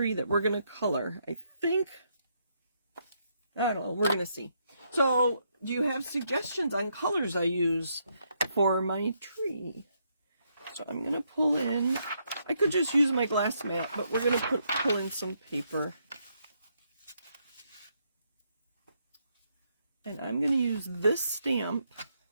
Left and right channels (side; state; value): both; inverted; correlation -0.76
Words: that we're going to color. I think, I don't know, we're going to see. So, do you have suggestions on colors I use for my tree? So I'm going to pull in, I could just use my glass mat, but we're going to pull in some paper. And I'm going to use this stamp.